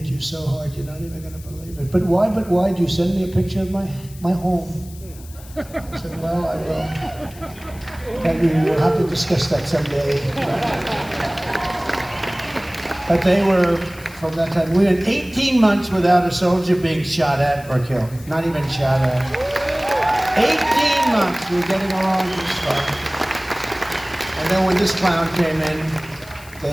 you so hard, you're not even going to believe it. But why? Do you send me a picture of my home? I said, well, I will. And we'll have to discuss that someday. But they were, from that time, we went 18 months without a soldier being shot at or killed. Not even shot at. 18 months, we were getting along just fine. And then when this clown came in, they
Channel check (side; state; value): left; noise; hiss, 21 dB below the sound